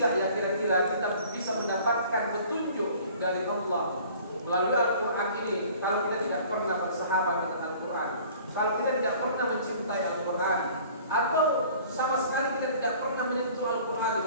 ya kira-kira kita bisa mendapatkan petunjuk dari Allah melalui Al-Quran ini kalau kita tidak pernah bersahabat dengan Al-Quran, kalau kita tidak pernah mencintai Al-Quran, atau sama sekali kita tidak pernah menyentuh Al-Quran di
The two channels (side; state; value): both; inverted; correlation -0.49